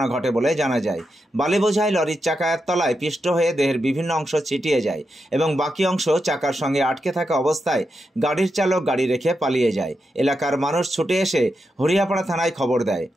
ঘটে বলে জানা যায়। বালি বোঝাই লরির চাকার তলায় পিষ্ট হয়ে দেহের বিভিন্ন অংশ ছিটিয়ে যায় এবং বাকি অংশ চাকার সঙ্গে আটকে থাকা অবস্থায় গাড়ির চালক গাড়ি রেখে পালিয়ে যায়। এলাকার মানুষ ছুটে এসে হরিয়াপাড়া থানায় খবর দেয়।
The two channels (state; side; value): normal; both; correlation 0.86